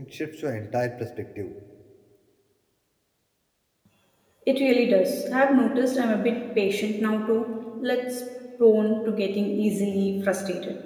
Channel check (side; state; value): both; identical; correlation 1.00